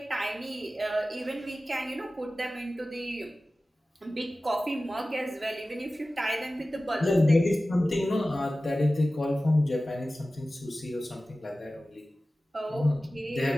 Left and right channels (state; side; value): normal; both; correlation 0.96